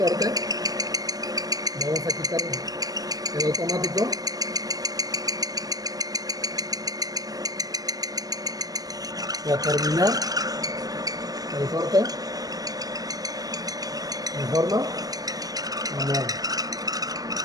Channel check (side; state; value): left; late; 0.18 ms